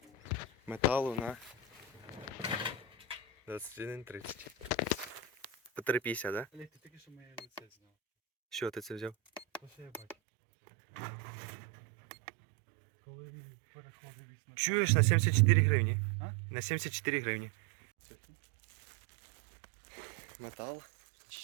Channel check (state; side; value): drops out; left; at 10.2 s